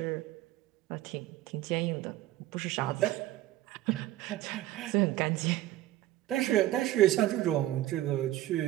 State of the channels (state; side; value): quieter; left; 15.1 dB